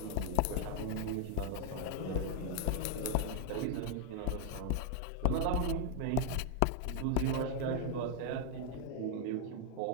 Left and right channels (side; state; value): both; different; correlation 0.00